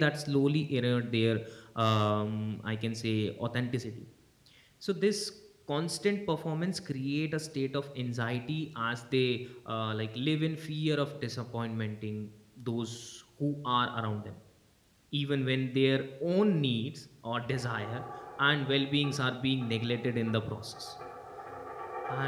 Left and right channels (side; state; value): both; identical; correlation 1.00